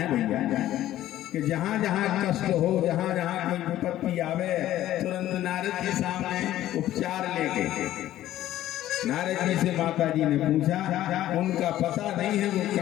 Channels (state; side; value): quieter; right; 13.6 dB